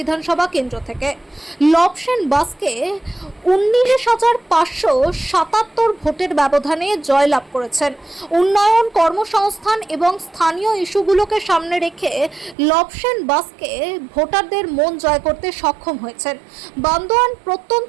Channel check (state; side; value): drops out; left; at 12.6 s